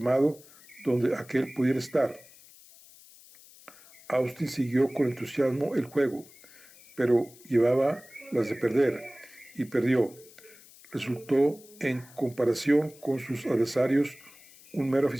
donde aquel pudiera estar. Austin siguió con entusiasmo el juego, pero llevaba las de perder, y perdió. Resultó, en comparación con sus adversarios, un mero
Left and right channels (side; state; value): left; noise; hiss, 23 dB below the sound